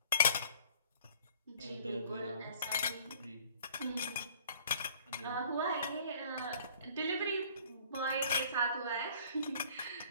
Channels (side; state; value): both; inverted; correlation -0.52